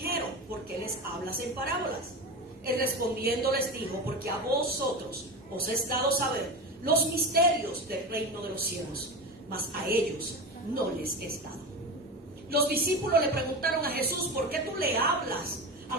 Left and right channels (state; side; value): normal; both; correlation 0.23